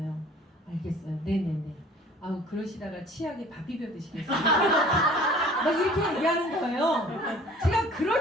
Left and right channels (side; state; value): both; normal; correlation 0.49